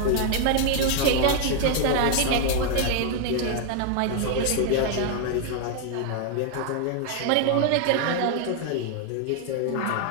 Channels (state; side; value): different; both; correlation 0.00